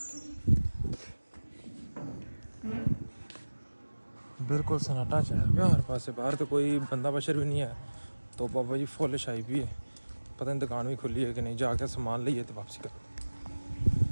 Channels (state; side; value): inverted; both; correlation -1.00